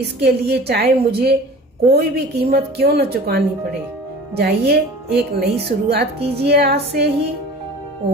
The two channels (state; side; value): normal; both; correlation 0.41